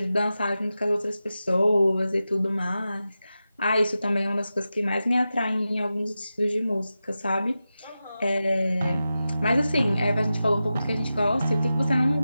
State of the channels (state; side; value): inverted; both; correlation -0.92